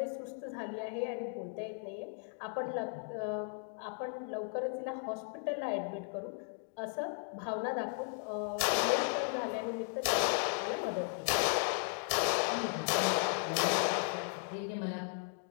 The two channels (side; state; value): right; silent; 54 dB below the other